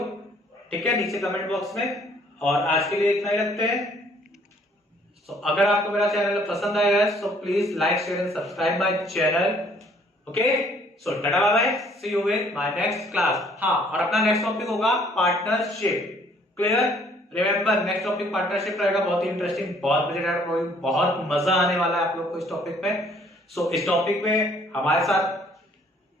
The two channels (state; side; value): normal; both; correlation 0.61